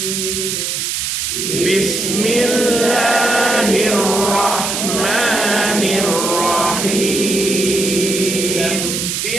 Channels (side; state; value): right; noise; hiss, 2 dB below the sound